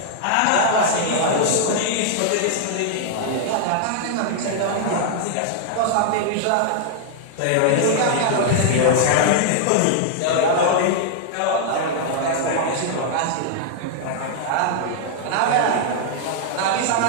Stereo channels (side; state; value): both; different; correlation -0.01